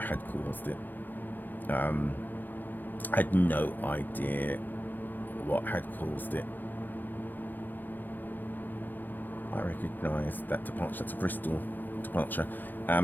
caused it. I had no idea what had caused it. I recognise that departure. That's a Bristol departure.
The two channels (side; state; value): right; late; 0.087 ms